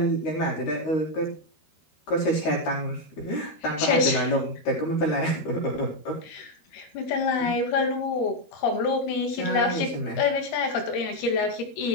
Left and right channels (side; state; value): right; late; 13 ms